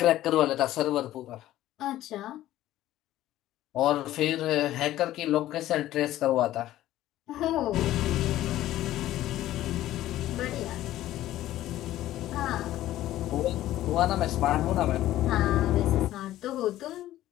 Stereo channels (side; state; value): right; quieter; 14.2 dB